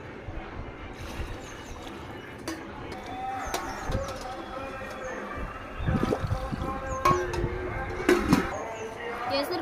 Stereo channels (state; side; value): identical; both; correlation 1.00